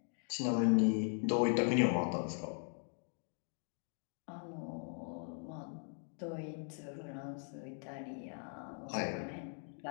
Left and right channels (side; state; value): right; silent; 51 dB below the other